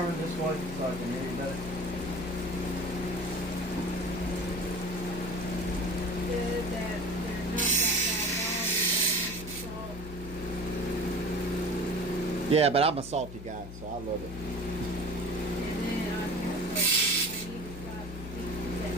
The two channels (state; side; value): noise; left; hum, 12 dB below the sound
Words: this way so I can hear you better? Yeah, but I'm a salty guy, so I love it.